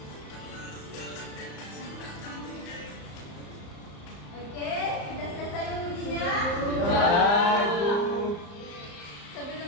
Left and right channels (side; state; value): right; late; 34 ms